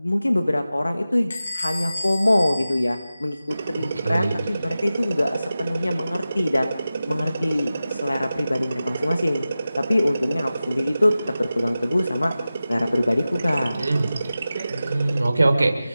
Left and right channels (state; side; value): inverted; both; correlation -0.95